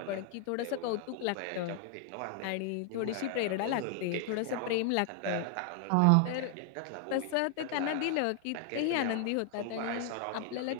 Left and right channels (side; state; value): both; different; correlation 0.00